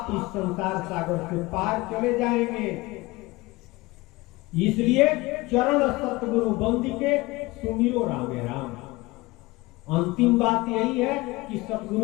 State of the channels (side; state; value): right; quieter; 21.7 dB